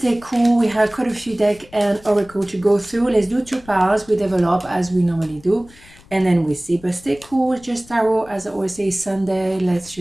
cool. We have quite a few deck and oracle to go through. Let's do 2 piles. We develop as we normally do. And then we see. But stay cool. Just tarot. As I always say, Sunday. Let's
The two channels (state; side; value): noise; left; rumble, 24 dB below the sound